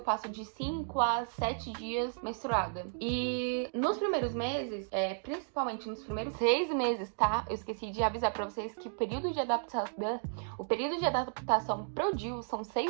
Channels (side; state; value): left; silent; digital silence